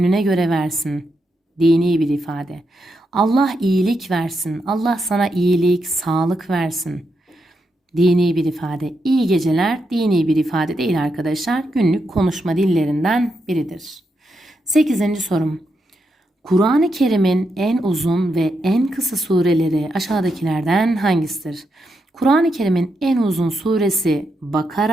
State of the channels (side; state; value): both; normal; correlation 0.83